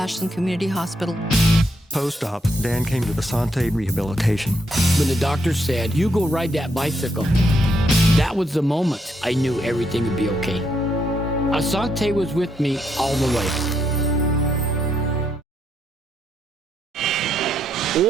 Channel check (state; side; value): normal; both; correlation 0.76